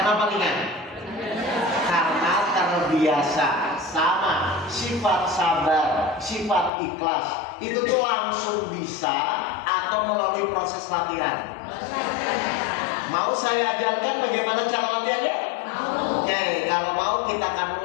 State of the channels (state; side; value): drops out; right; at 6.7 s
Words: ringan? Karena terbiasa. Sama sifat sabar, sifat ikhlas itu tuh langsung bisa atau melalui proses latihan. Mau saya ajarkan bagaimana cara latihannya? Oke, kalau mau kita